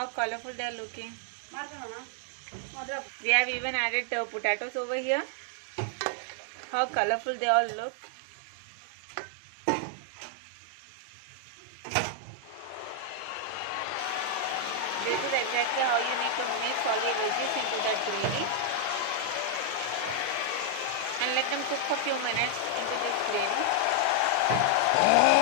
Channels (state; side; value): different; both; correlation 0.00